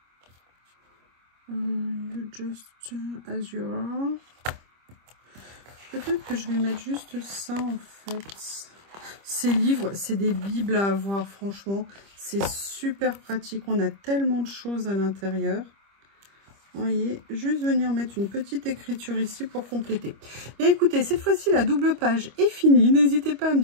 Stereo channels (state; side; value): late; left; 25 ms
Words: You just as you are. Peut-être que je vais mettre juste ça, en fait. Ces livres, c'est des bibles à avoir, franchement. C'est super pratique. On a tellement de choses à l'intérieur. Vous voyez, juste venir mettre une petite écriture ici pour compléter. Et écoutez, cette fois-ci, la double page est finie. N'hésitez pas à me